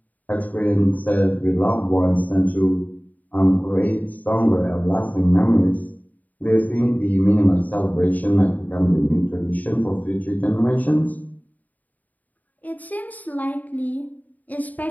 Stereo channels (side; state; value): right; late; 0.079 ms